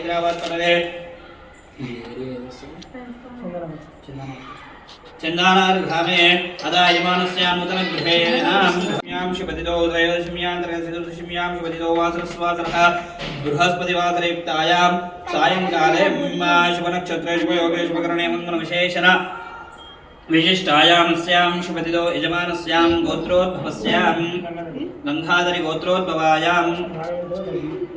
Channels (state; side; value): identical; both; correlation 1.00